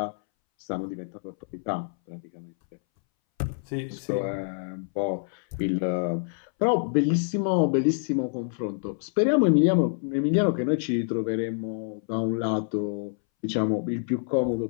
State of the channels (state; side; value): silent; right; 60 dB below the other